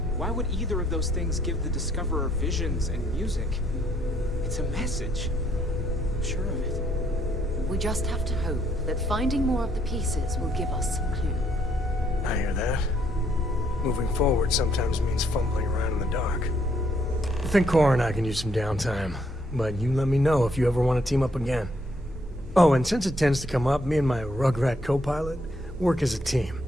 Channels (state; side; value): normal; both; correlation 0.70